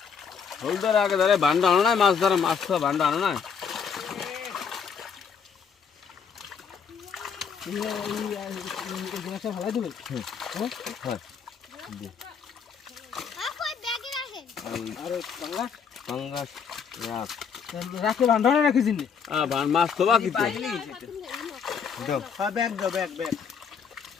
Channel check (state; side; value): quieter; right; 6.6 dB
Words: হোল ধরে আগে ধরে বান্ডা আনো না মাছ ধরে মাছ তো বান্ডা আনো না ভালো দেবে আরে পাঙ্গাস রাখ রাখে বান্ধানো রাখিস নি মাছ তো বাকি তো দাও হ্যাঁ ব্যাগ দাও ব্যাগ ব্যাগ